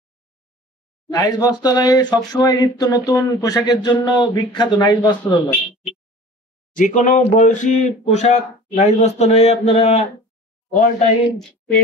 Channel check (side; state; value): both; normal; correlation 0.42